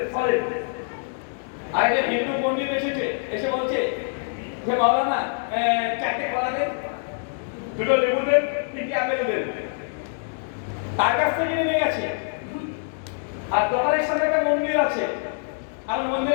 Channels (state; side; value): silent; right; digital silence